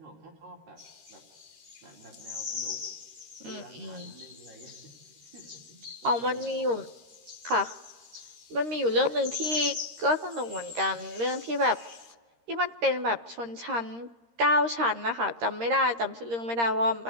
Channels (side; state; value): left; late; 13 ms